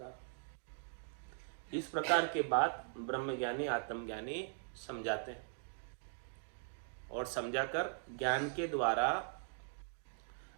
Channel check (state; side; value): silent; left; digital silence